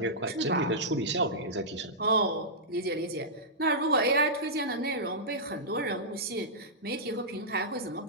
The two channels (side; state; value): both; normal; correlation -0.13